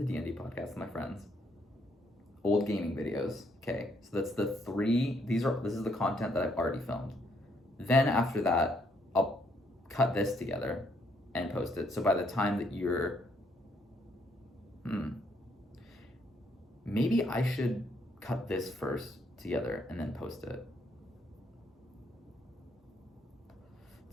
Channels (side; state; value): both; normal; correlation 0.71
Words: D&D podcast with my friends, old gaming videos. Okay, so that's the 3. This is the content that I've already filmed. Then after that, I'll cut this together and post it. So by the time that maybe I should cut this first together and then post it.